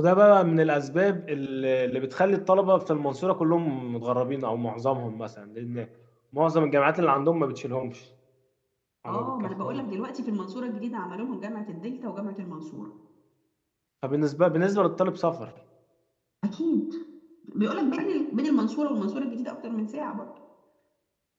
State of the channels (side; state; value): both; identical; correlation 1.00